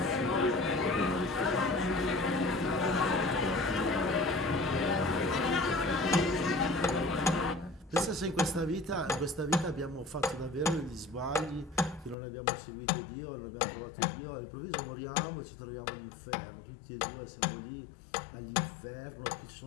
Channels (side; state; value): right; drops out; at 12.2 s